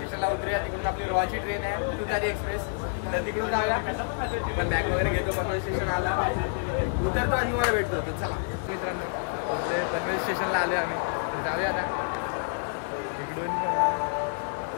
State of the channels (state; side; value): silent; right; digital silence